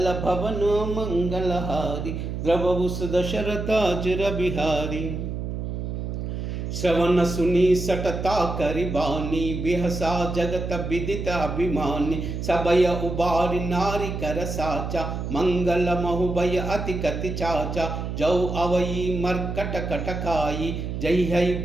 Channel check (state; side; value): noise; right; hum, 4 dB below the sound